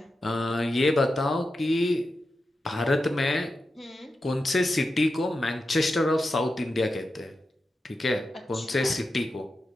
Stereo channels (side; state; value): both; normal; correlation 0.90